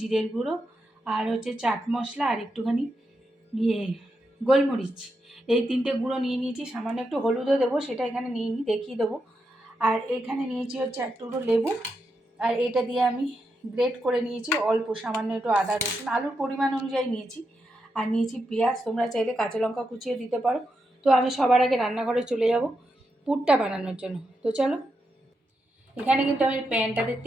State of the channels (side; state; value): both; normal; correlation 0.85